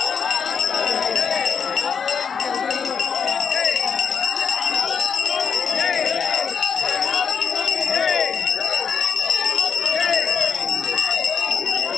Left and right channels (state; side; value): quieter; right; 6.6 dB